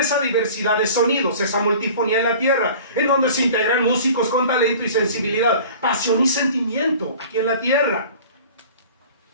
diversidad de sonidos, esa multifonía en la tierra, en donde se integran músicos con talento y sensibilidad, pasión y sentimiento aquí en la tierra.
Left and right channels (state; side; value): inverted; both; correlation -0.43